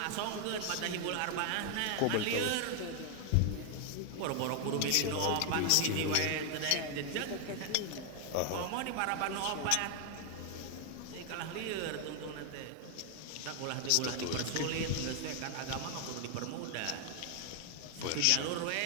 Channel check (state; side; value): different; both; correlation 0.00